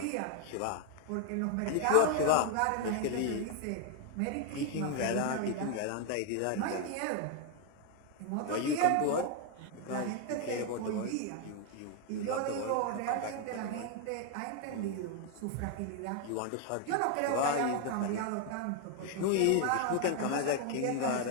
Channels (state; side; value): different; both; correlation 0.00